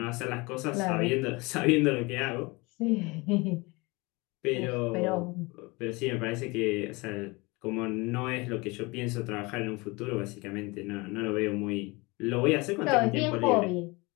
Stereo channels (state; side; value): quieter; right; 25.2 dB